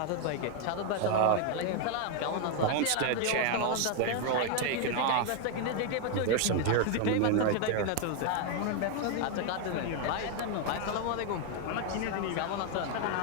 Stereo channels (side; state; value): both; different; correlation 0.00